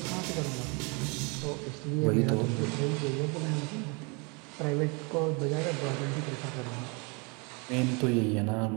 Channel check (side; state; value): left; quieter; 31.4 dB